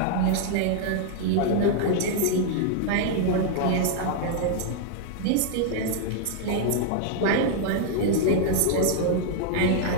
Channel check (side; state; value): both; different; correlation 0.00